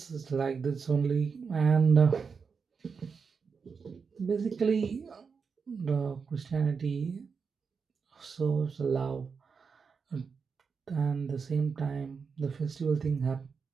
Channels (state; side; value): quieter; left; 5.6 dB